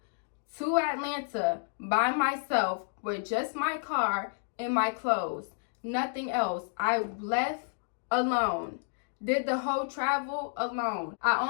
to Atlanta by myself with just my car and my clothes. Nothing else. I left alone. Did the whole travel alone. I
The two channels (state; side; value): silent; right; digital silence